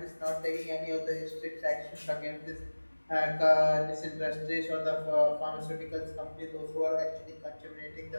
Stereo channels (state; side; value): inverted; both; correlation -1.00